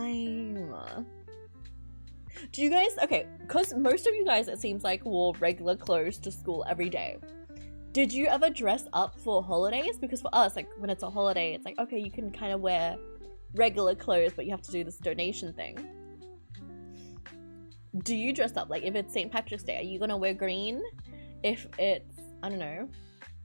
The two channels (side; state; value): both; inverted; correlation -1.00